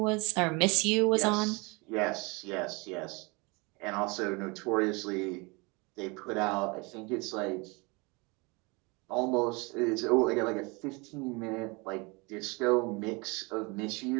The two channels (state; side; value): quieter; left; 27.9 dB